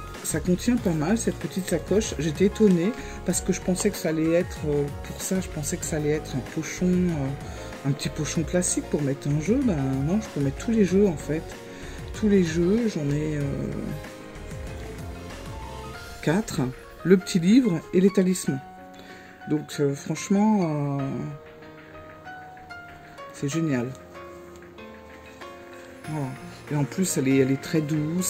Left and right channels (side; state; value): both; identical; correlation 1.00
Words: ça contient pas mal, cette petite sacoche. J'étais étonnée parce que je pensais que ça allait être, pour ça, je pensais que ça allait être un pochon, un petit pochon classique pour mettre un jeu. Ben non, je peux mettre tous les jeux en fait. Tous les jeux, j'en ai 4. Le petit livre et les talismans. Donc franchement, c'est génial. Voilà. Et en plus, elle est très